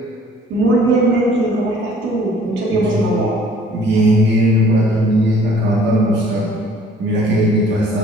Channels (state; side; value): normal; both; correlation 0.55